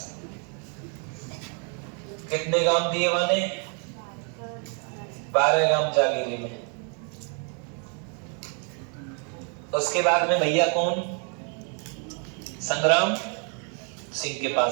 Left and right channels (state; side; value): quieter; left; 39.7 dB